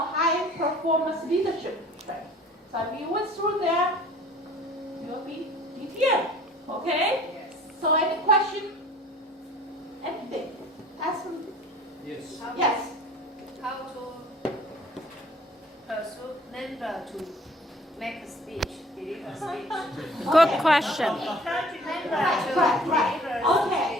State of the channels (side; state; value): both; normal; correlation 0.50